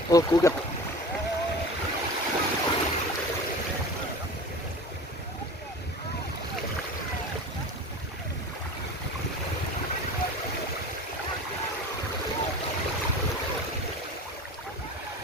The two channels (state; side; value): normal; both; correlation 0.36